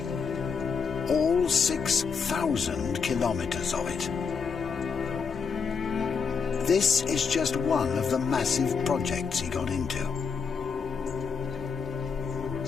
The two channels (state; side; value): quieter; right; 5.6 dB